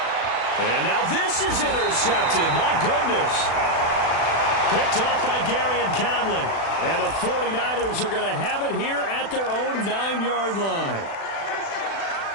And now this is intercepted. My goodness. Picked off by Gary and Conley. And the 49ers are going to have it here at their own 9-yard line.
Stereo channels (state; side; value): late; right; 36 ms